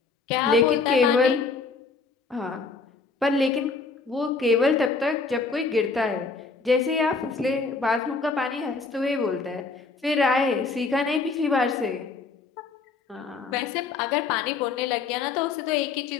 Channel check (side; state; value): right; quieter; 4.3 dB